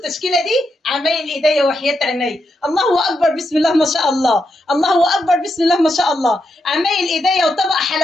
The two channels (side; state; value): both; normal; correlation 0.83